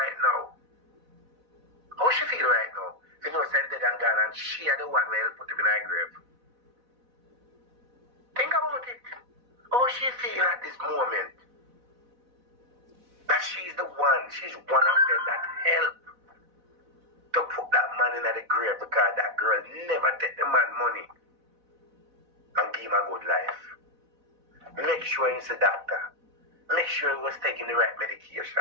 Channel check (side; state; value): left; late; 4.0 ms